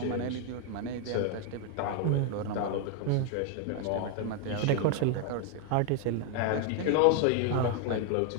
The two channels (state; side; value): different; both; correlation 0.01